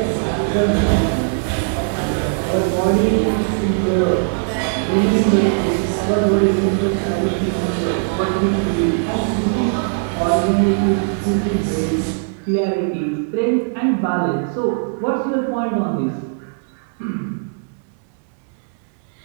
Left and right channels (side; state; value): left; silent; digital silence